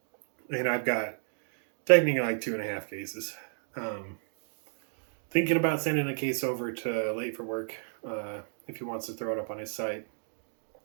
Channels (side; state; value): left; silent; digital silence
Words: And I've got technically like 2.5 cases. Thinking about sending a case over to Late for Work if he wants to throw it up on his site.